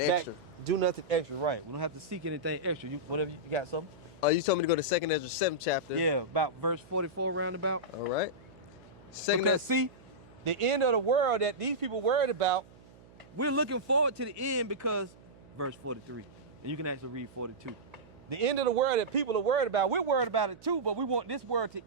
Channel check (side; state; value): right; noise; hum, 23 dB below the sound